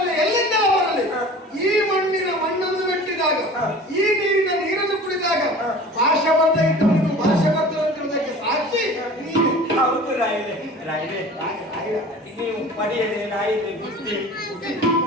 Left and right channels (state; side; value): normal; both; correlation 0.41